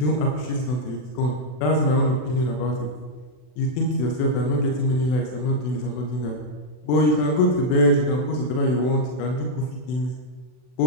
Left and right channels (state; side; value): late; right; 40 ms